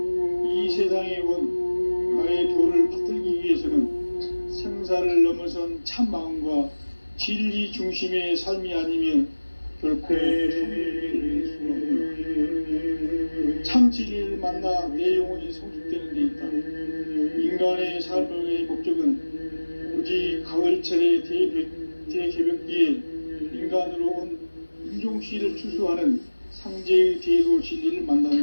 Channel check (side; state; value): both; inverted; correlation -1.00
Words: 이 세상에 온 나의 도를 받들기 위해서는 생사를 넘어선 참 마음과 진리 중심의 삶이 아니면 결코 참회를 수 없다. 참 진리를 만나 내 영혼이 성숙되는 데 있다. 인간의 삶의 목적은 오직 가을철의 대개벽기에 인간으로 온 인종씨를 추수하는 상제의 대도 진리를